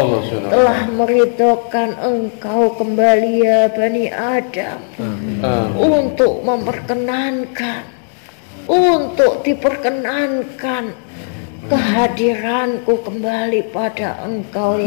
Subhanahu wa telah ta'ala. meridhokan engkau kembali ya Bani Adam. Untuk memperkenankan, untuk diperkenankan kehadiranku kembali pada engkau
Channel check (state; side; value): silent; right; digital silence